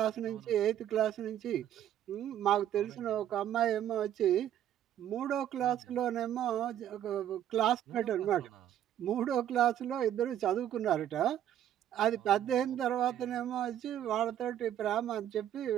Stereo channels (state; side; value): quieter; left; 11.0 dB